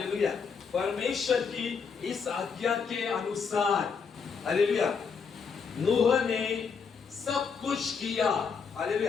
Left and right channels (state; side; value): quieter; right; 5.8 dB